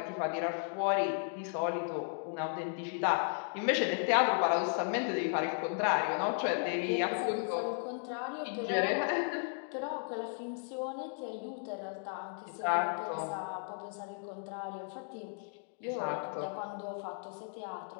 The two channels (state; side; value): silent; right; 54 dB below the other